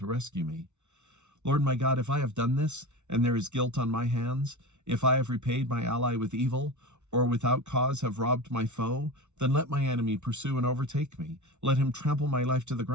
rescue me. Lord my God, if I have done this, and there is guilt on my hands, if I have repaid my ally with evil, or without cause have robbed my foe, then let my enemy pursue and overtake me. Let him trample my life to the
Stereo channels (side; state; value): left; late; 0.82 ms